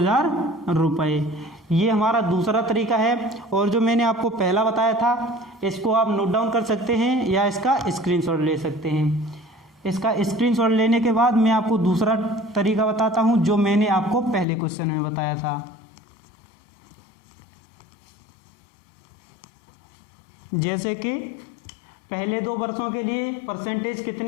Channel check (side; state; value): right; drops out; at 14.5 s